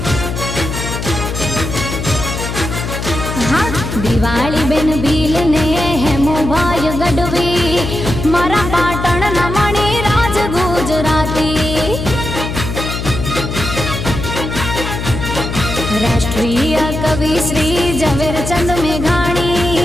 दिवाली बेन भील ने हेमो भाई गढ़वी मारा पाटण ना मणि राज गुजराती राष्ट्रीय कवि श्री झवेरचंद मेघाणी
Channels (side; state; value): left; noise; hum, 5 dB below the sound